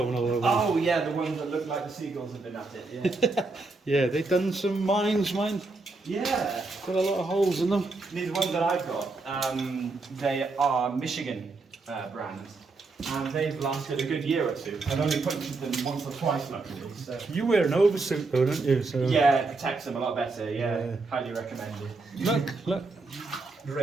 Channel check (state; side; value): quieter; left; 3.6 dB